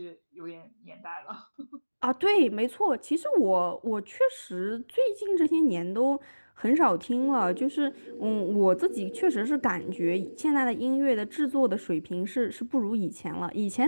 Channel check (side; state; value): both; inverted; correlation -1.00